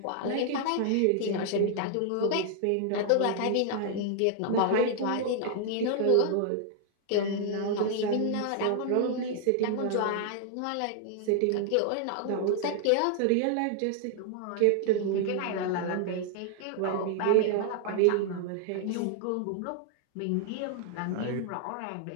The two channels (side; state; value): both; different; correlation 0.00